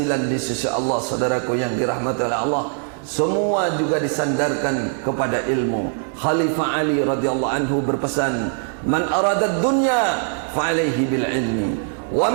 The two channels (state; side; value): silent; left; 61 dB below the other